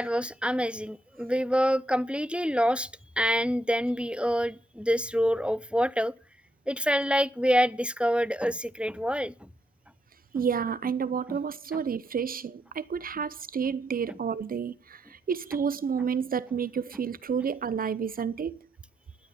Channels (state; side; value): normal; both; correlation 0.78